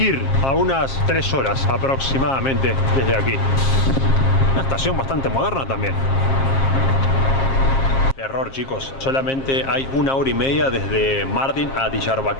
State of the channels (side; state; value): right; late; 7.5 ms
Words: a unas 3 horas aproximadamente desde aquí. Una estación bastante moderna también. Error, chicos, solamente hay 1 hora y media desde Mardin a